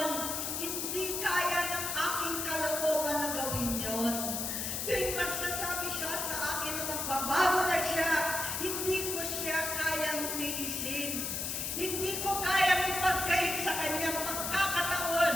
hindi kaya ng aking kalooban na gawin yon. Tuwing magsasabi siya sa akin na magbabago na siya, hindi ko siya kayang tiisin. Hindi ko kayang ipagkait sa kanyang pagkakataon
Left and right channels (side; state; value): left; noise; hiss, 2 dB below the sound